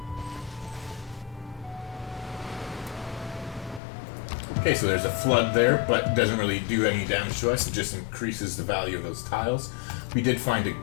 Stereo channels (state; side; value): drops out; right; at 3.8 s